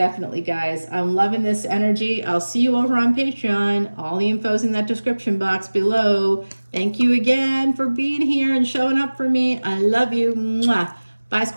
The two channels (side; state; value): both; inverted; correlation -1.00